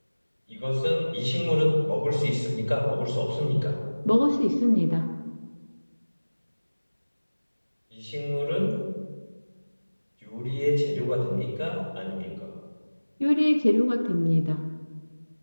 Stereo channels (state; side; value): inverted; both; correlation -1.00